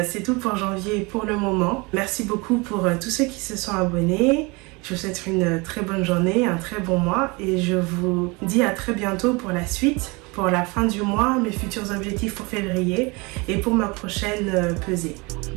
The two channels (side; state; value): left; quieter; 27.0 dB